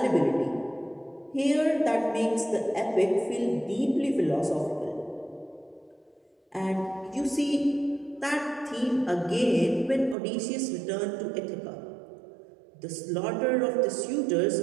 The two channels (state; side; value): drops out; left; at 10.2 s